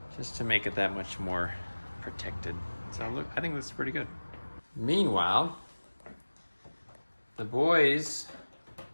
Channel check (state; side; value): inverted; both; correlation -1.00